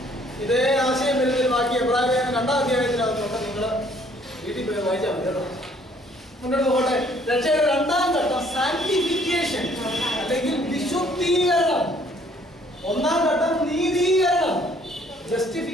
ഇതേ ആശയം വരുന്നൊരു ബാക്കി എബ്രായലേഖനം 2-ാം അധ്യായത്തിനകത്തുണ്ട്. നിങ്ങൾ വീട്ടിൽ പോയി വായിച്ചാൽ മതി കേട്ടോ. മുന്നോട്ട് പോകട്ടെ. രക്ഷയുടെ 2-ാം ഘട്ടം സാങ്ക്ടിഫിക്കേഷൻ അല്ലെങ്കിൽ വിശുദ്ധീകരണം. 1-ാം ഘട്ടം നീതീകരണം,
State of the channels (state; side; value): normal; both; correlation 0.61